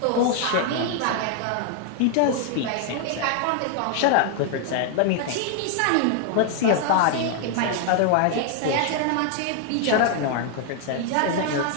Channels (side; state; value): both; different; correlation 0.00